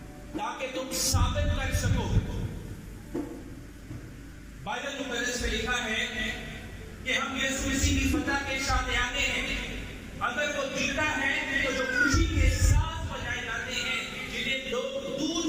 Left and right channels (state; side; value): identical; both; correlation 1.00